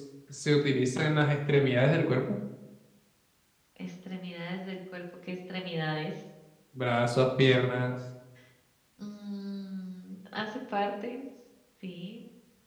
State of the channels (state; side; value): identical; both; correlation 1.00